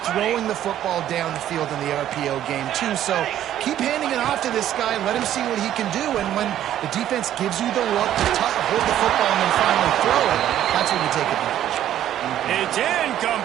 throwing the football down the field in the RPO game too. So keep handing it off to this guy. Let him see what he can do. And when the defense gives you the look to hold the football and then finally throw it, that's when you take advantage. It's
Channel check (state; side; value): quieter; left; 11.7 dB